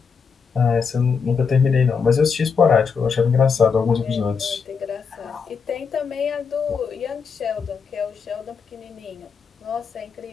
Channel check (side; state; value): right; quieter; 5.8 dB